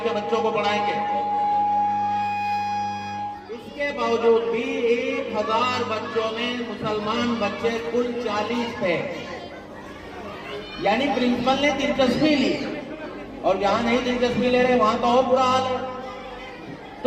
کے بچوں کو پڑھائیں گے۔ اس کے باوجود بھی 1000 بچوں میں مسلمان بچے کل 40 تھے، یعنی پرنسپل نے دلچسپی لی، اور جہاں نہیں دلچسپی لے رہے وہاں تو اور برا حال ہے۔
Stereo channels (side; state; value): both; identical; correlation 1.00